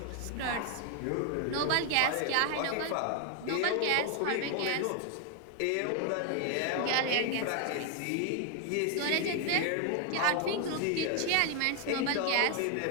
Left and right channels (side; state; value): both; different; correlation 0.00